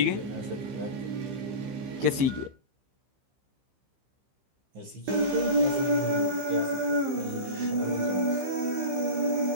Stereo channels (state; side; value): late; left; 15 ms